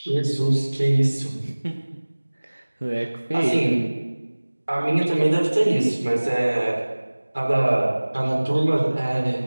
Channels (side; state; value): both; inverted; correlation -1.00